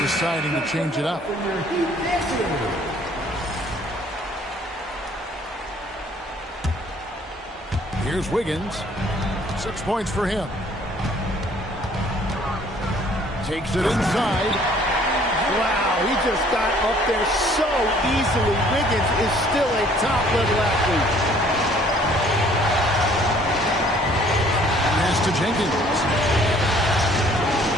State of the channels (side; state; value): both; normal; correlation 0.58